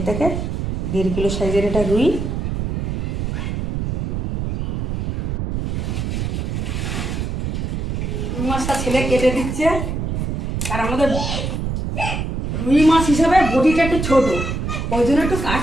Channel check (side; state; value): right; noise; rumble, 2 dB below the sound